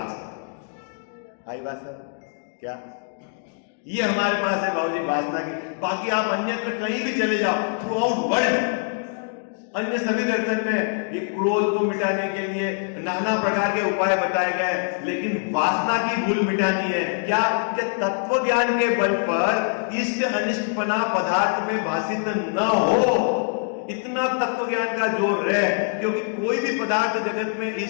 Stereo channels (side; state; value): right; silent; 61 dB below the other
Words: है। आई बात सर क्या, ये हमारे पास है बाबूजी वासना की। बाकी आप अन्य पे कहीं भी चले जाओ, थ्रू आउट वर्ल्ड अन्य सभी दर्शन में ये क्रोध को मिटाने के लिए नाना प्रकार के उपाय बताए गए, लेकिन वासना की भूल मिटानी है क्या, कि तत्व ज्ञान के बल पर इष्ट अनिष्टपना पदार्थ में भाषित न हो, इतना तत्व ज्ञान का जोर है, क्योंकि कोई भी पदार्थ जगत में